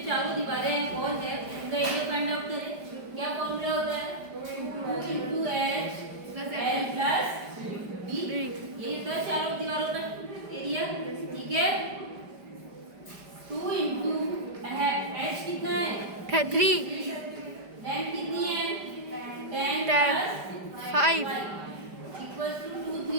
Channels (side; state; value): left; late; 5.0 ms